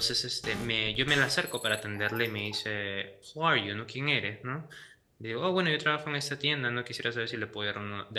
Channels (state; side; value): identical; both; correlation 1.00